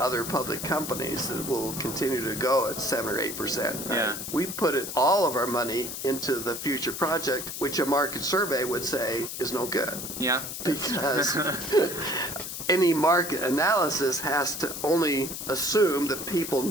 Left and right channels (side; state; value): left; noise; hiss, 7 dB below the sound